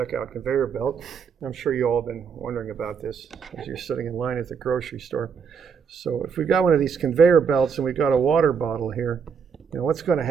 conveyor belt. I'm sure you all have been wondering about this as you're sitting in line at the grocery store. So if we got one of these conveyor belts and we got a water bottle here, what's going to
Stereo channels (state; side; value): quieter; left; 6.4 dB